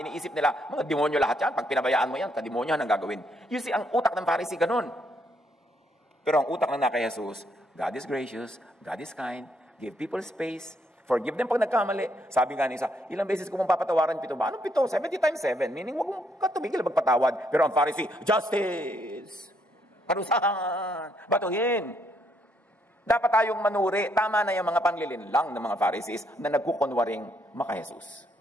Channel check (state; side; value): normal; both; correlation 0.72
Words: Iniisip nila, mga demonyo lahat yan. Pag pinabayaan mo yan, kademonyo ang gagawin. You see, ang utak ng Pharisee ganun. Pero ang utak ng kay Jesus, God is gracious, God is kind, give people space, forgive them pag nagkamali. Sabi nga ni isa, ilang beses ko mong papatawaran 7 ba? Anong 7? 70 times 7. Meaning, wag mong katumigil magpatawad. Pero ang Pharisee, justice! Parusahan! Batuhin! Dapat tayong manuri. Tama na yung mga panglilinlang ng mga Pharisees na nagkukunwaring maka-Jesus.